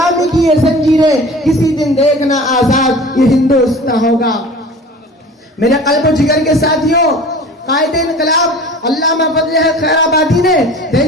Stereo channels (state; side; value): normal; both; correlation 0.41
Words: کی یہ زنجیریں، کسی دن دیکھنا آزاد یہ ہندوستان ہوگا. میرے قلب و جگر کے ساتھیوں، قائد انقلاب علامہ فضل خیر آبادی نے